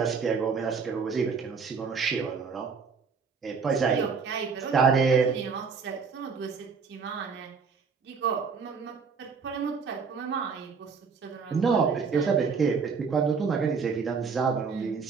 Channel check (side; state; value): left; quieter; 5.5 dB